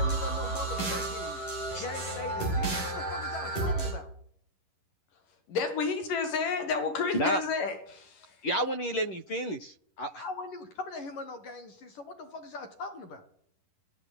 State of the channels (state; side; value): late; right; 11 ms